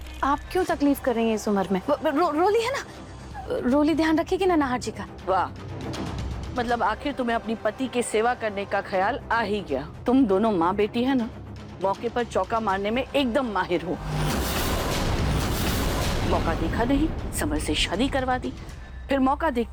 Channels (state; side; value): identical; both; correlation 1.00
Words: आप क्यों तकलीफ कर रही हैं इस उम्र में? रोली है ना, रोली ध्यान रखेगी ना नाहर जी का। वाह, मतलब आखिर तुम्हें अपनी पति की सेवा करने का ख्याल आ ही गया। तुम दोनों माँ बेटी है ना, मौके पर चौका मारने में एकदम माहिर हो। मौका देखा नहीं, समर से शादी करवा दी, फिर मौका